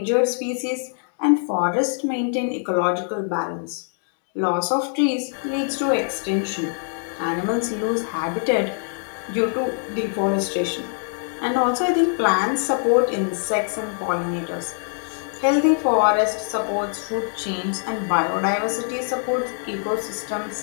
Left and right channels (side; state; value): right; silent; 56 dB below the other